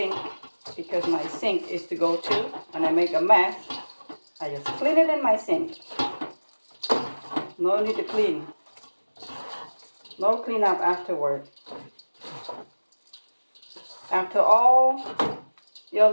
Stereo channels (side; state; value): both; inverted; correlation -1.00